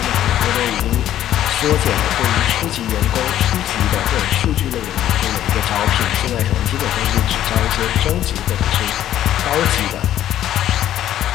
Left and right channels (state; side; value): quieter; right; 12.0 dB